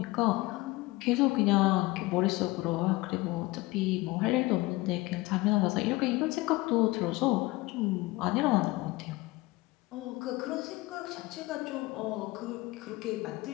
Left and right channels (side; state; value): right; quieter; 21.2 dB